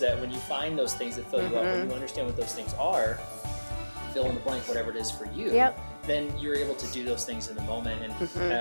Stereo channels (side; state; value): both; inverted; correlation -1.00